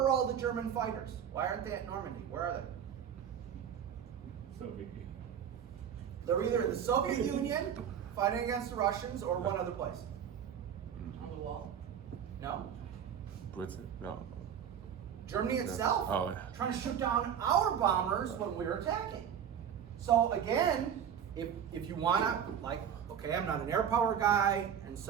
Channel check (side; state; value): left; quieter; 8.6 dB